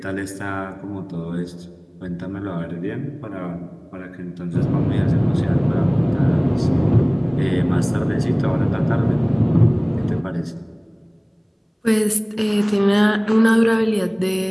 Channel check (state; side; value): identical; both; correlation 1.00